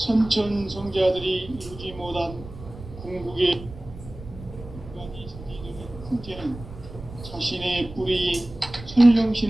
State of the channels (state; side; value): noise; right; rumble, 15 dB below the sound